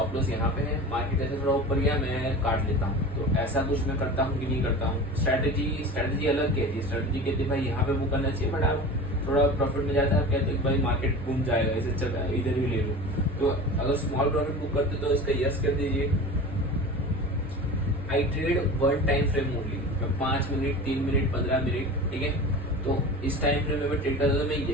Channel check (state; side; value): normal; both; correlation 0.34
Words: लॉस यहाँ पे है, मार्केट जैसे थोड़ा ऊपर गया मैं काट लेता हूँ। तो ऐसा कुछ मैं करता हूँ कि नहीं करता हूँ? स्ट्रैटेजी अलग कहती है। स्ट्रैटेजी कहती है भाई यहाँ पे बुक करना चाहिए, बट आप थोड़ा प्रॉफिट में जाता है, आप कहते हैं भाई मार्केट घूम जाएगा, इसे चल रहा है, इधर भी ले लूँ। तो अगर स्मॉल प्रॉफिट बुक करते तो इसका यस कर दीजिए। आई ट्रेड 1 टाइम फ्रेम ओनली। मैं 5 मिनट, 3 मिनट, 15 मिनट, ठीक है। तो इस टाइम फ्रेम में मैं ट्रेड करता हूँ, मैं